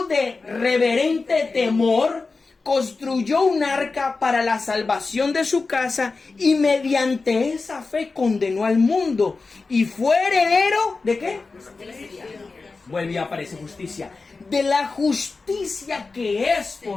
de reverente temor, construyó un arca para la salvación de su casa y mediante esa fe condenó al mundo y fue heredero ¿de qué? Vuelve y aparece justicia, de la justicia que es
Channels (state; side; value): quieter; right; 4.0 dB